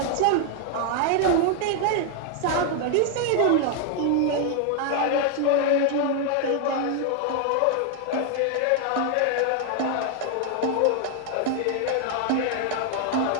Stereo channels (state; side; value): different; both; correlation 0.00